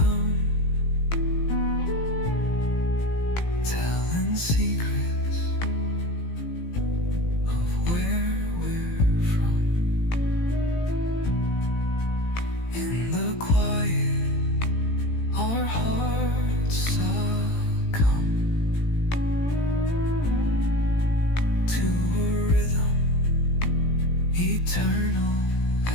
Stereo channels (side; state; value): right; late; 18 ms